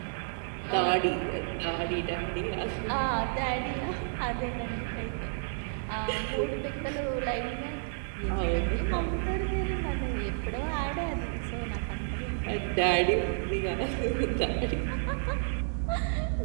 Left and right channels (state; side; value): silent; left; digital silence